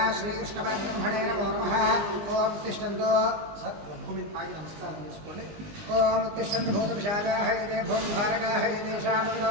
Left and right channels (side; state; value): left; late; 19 ms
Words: श्रीकृष्णपरब्रह्मणे नमो नमः। ओम तिष्ठन्तु भूमि आगे नमस्कारं చేసుకోండి। ओम तिष्ठन्तु भूतपिशाचाः ये भूमभारकाः येषां